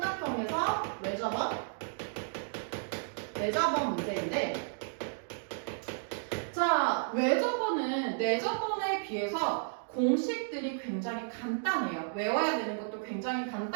외접원 문제인데, 자, 외접원은 내접원에 비해서 공식들이 굉장히 간단해요. 외워야 되는 것도 굉장히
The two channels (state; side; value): silent; left; digital silence